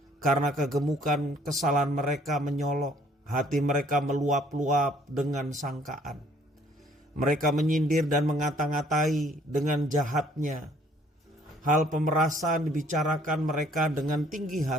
Karena kegemukan kesalahan mereka menyolok, hati mereka meluap-luap dengan sangkaan. Mereka menyindir dan mengata-ngatai dengan jahatnya. Hal pemerasan dibicarakan mereka dengan tinggi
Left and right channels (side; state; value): both; normal; correlation 0.60